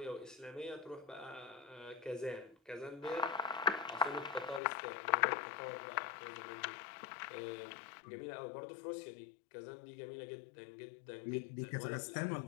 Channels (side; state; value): right; drops out; at 4.6 s